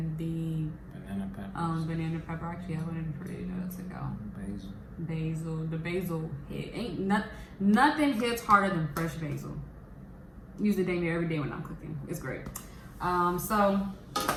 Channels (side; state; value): both; identical; correlation 1.00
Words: the banana pepper. Banana pepper. Actually, I wanted for you to go. Basil. The basil nothing hits harder than fresh basil. Use it dang near every day when I'm cooking. It's great. So